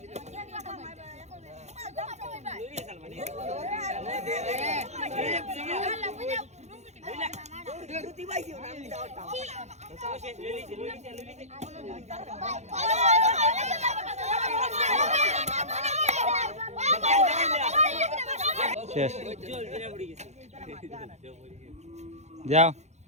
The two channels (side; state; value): left; late; 0.33 ms